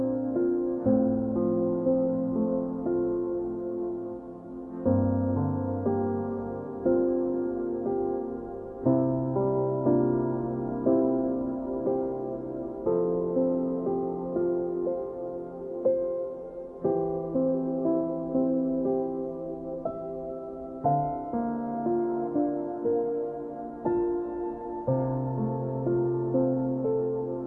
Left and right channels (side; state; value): both; identical; correlation 1.00